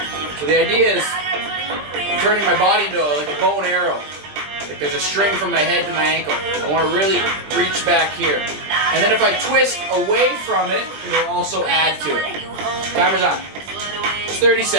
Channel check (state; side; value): late; left; 20 ms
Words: So the idea is I'm turning my body into like a bow and arrow. Like there's a string from my head to my ankle. I want to really reach back here. And then if I twist away from it, it'll also add to it. Timer's on. It's 30